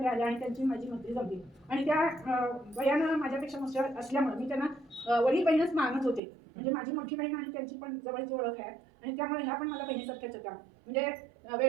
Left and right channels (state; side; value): drops out; left; at 6.2 s